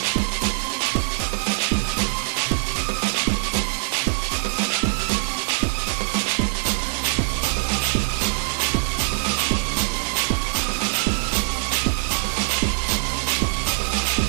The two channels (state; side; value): silent; left; digital silence